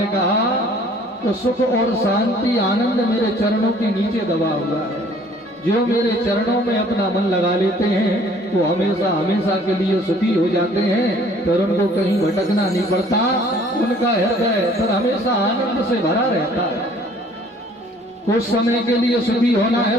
कहा तो सुख और शांति आनंद मेरे चरणों के नीचे दबा हुआ है। जो मेरे चरणों में अपना मन लगा लेते हैं वो हमेशा हमेशा के लिए सुखी हो जाते हैं, फिर उनको कहीं भटकना नहीं पड़ता। उनका हृदय फिर हमेशा आनंद से भरा रहता है। कुछ समय के लिए सुखी होना है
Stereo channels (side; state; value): both; normal; correlation 0.56